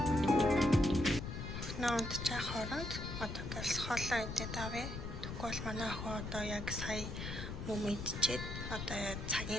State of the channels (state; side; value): noise; left; rumble, 6 dB below the sound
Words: Наад чаа хооронд одоо гэлс хоолоо идээд авъя. Тэгвэл манай охин одоо яг сая мөм идчихэд одоо